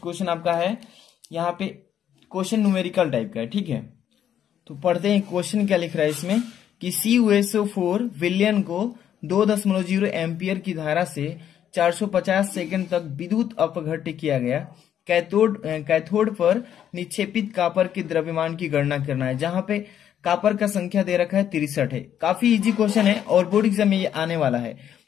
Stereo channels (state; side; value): quieter; right; 9.9 dB